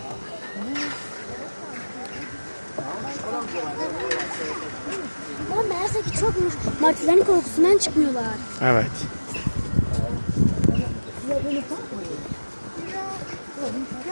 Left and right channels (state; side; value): inverted; both; correlation -1.00